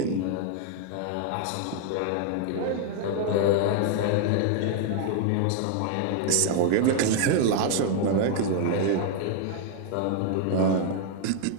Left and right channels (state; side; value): different; both; correlation 0.00